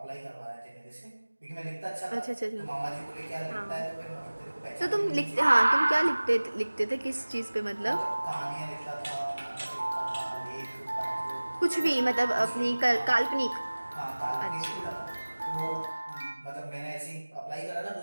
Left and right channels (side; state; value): both; inverted; correlation -1.00